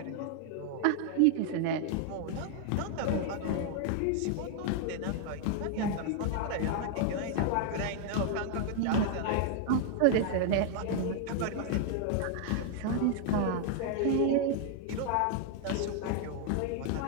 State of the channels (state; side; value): different; both; correlation 0.00